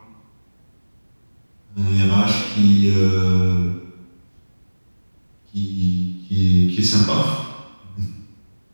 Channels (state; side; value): inverted; both; correlation -1.00